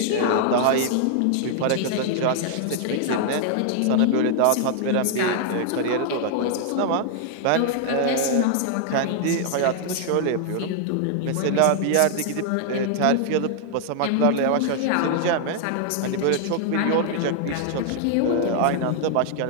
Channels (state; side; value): different; both; correlation 0.00